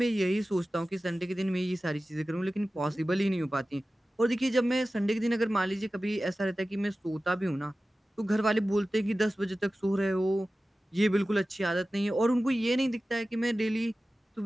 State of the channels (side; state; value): both; normal; correlation 0.95